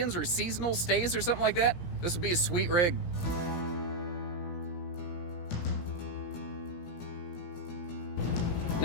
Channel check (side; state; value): right; late; 17 ms